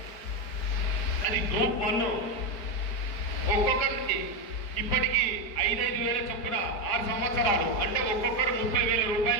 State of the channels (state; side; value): late; right; 4.8 ms